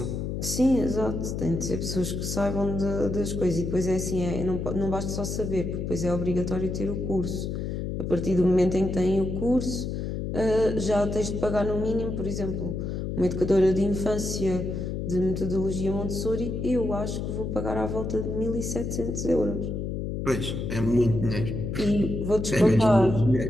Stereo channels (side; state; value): left; noise; hum, 3 dB below the sound